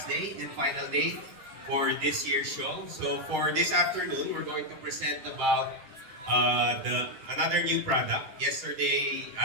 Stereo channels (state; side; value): late; left; 10 ms